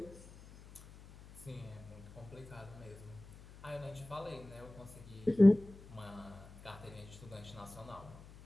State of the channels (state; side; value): noise; left; hum, 19 dB below the sound